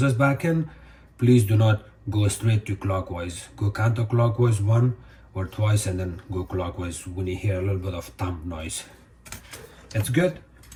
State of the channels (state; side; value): identical; both; correlation 1.00